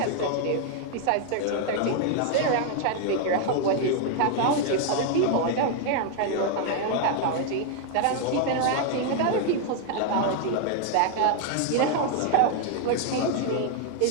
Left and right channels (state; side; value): different; both; correlation 0.00